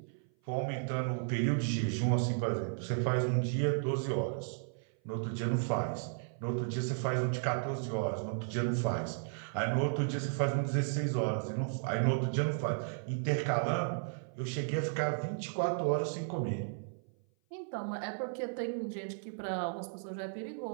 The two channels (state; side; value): silent; left; 55 dB below the other